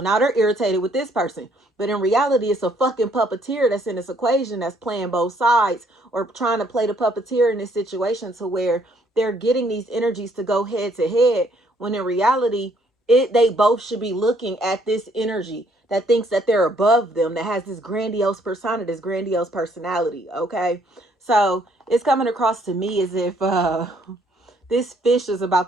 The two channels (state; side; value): normal; both; correlation 0.66